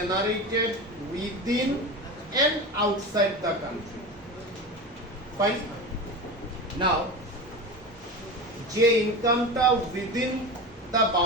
within and outside the country. Fine. Now যে ইনকামটা within the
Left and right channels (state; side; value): normal; both; correlation 0.26